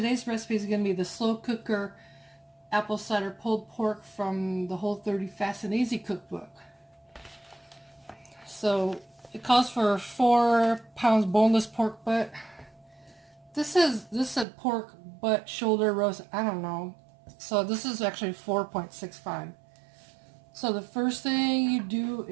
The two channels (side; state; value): left; drops out; at 14.5 s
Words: recipe is going to be the slow cooker apple cider pulled pork from the Whole30 Fast and Easy cookbook. So it calls for 4 pounds boneless pork butt. This said pork butt shoulder roast. I don't know. So this is actually 4.65. So the first thing you do